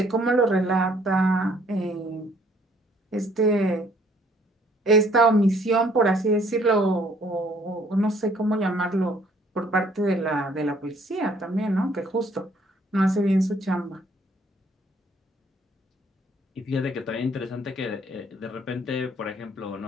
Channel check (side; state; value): both; normal; correlation 0.62